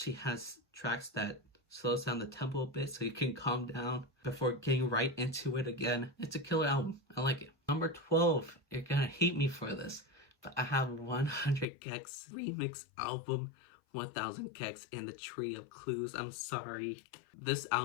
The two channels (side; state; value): right; drops out; at 11.7 s